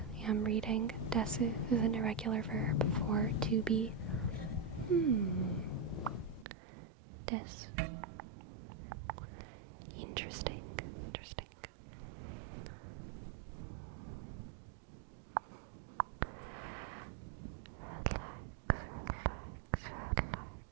am reading. Desu is an irregular verb for to be. Desu. Interesting.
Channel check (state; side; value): drops out; left; at 6.5 s